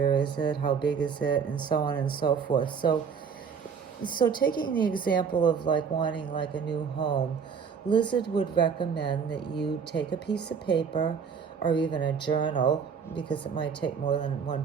is it? How big is it? And so on and so forth. So taking the example of like wanting like a new home, Lizard would recommend that you take a piece of paper or even a journal, because it might take more than one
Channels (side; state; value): left; quieter; 6.4 dB